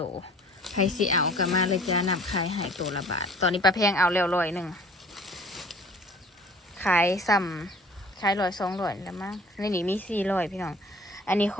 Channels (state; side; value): normal; both; correlation 0.49